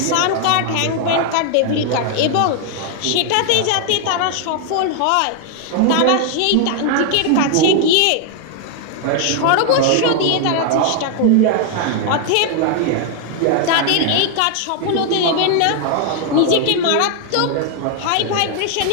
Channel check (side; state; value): both; different; correlation 0.00